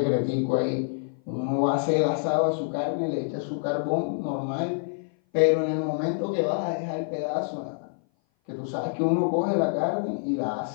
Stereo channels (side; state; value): right; silent; 57 dB below the other